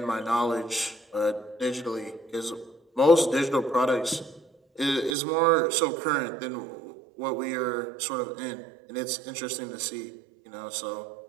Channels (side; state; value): left; drops out; at 5.2 s